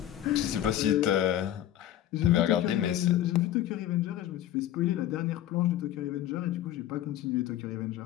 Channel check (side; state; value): right; quieter; 12.4 dB